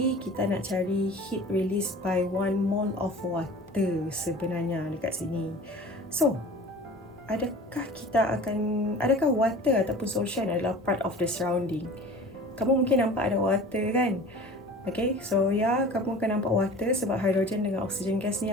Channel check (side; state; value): both; normal; correlation 0.41